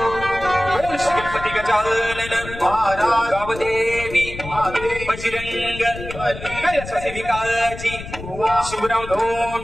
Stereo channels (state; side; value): noise; left; rumble, 12 dB below the sound